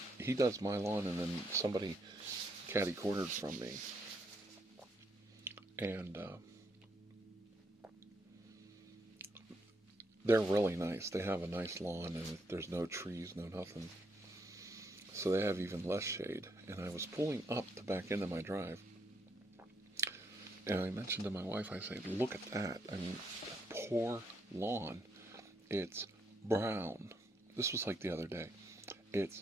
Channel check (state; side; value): normal; both; correlation 0.75